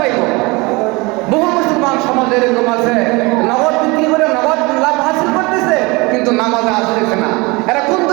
বহু মুসলমান সমাজে এরকম আছে, নগদ বিক্রি করে নগদ লাভ হাসিল করতেছে কিন্তু নামাজে আসতেছে না। এরা কোন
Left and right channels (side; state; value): left; quieter; 25.2 dB